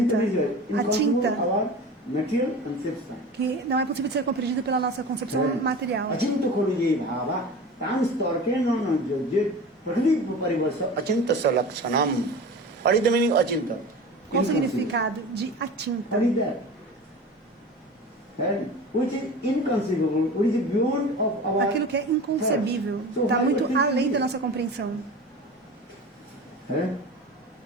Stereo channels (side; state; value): both; normal; correlation 0.34